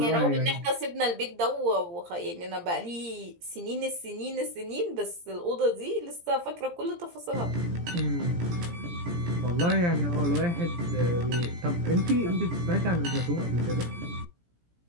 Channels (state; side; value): late; left; 17 ms